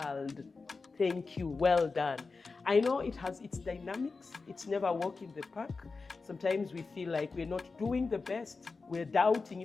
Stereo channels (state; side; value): quieter; right; 4.2 dB